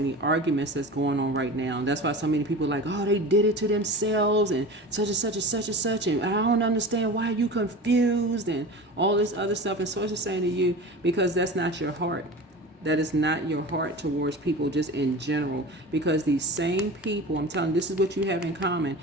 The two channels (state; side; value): normal; both; correlation 0.33